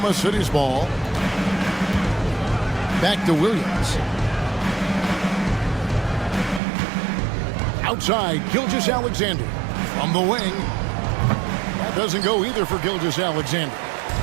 City's ball. Back to Williams. Outside, Gilgeous-Alexander. From the wing. That doesn't go either for Gilgeous-Alexander.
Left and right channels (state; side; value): drops out; left; at 6.6 s